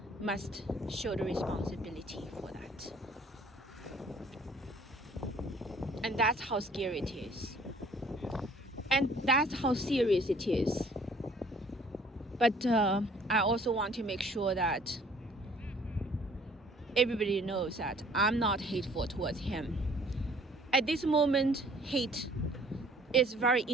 must show the responsibility for that. And that's how scary it is. And that's how serious it is. But I also want to make sure that everybody knows that I'm not hateful towards him. At this moment, hate is very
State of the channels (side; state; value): both; normal; correlation 0.56